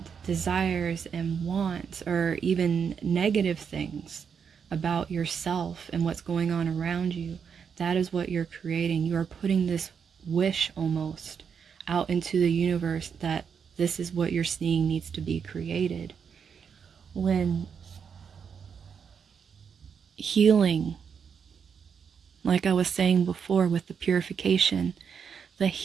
desires and wants, or even negative things about yourself and what's going on around you, that is what you're creating. You are putting this wish almost out into the universe that this is what you're seeing needs to be created. When healing, like I was saying before with the purification, the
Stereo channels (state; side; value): quieter; left; 6.8 dB